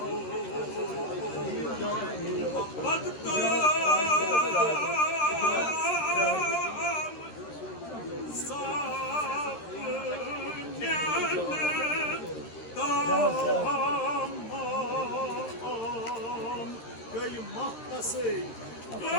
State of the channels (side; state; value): right; late; 13 ms